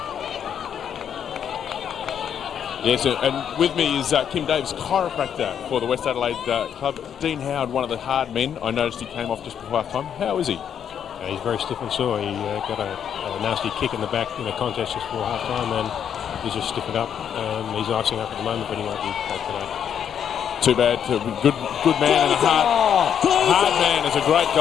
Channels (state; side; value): quieter; right; 8.6 dB